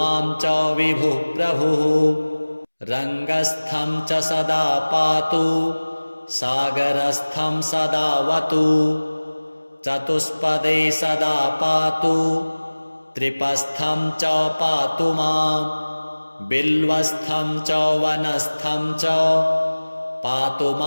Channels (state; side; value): inverted; both; correlation -1.00